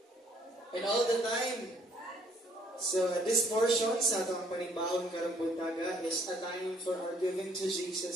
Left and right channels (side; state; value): both; normal; correlation 0.64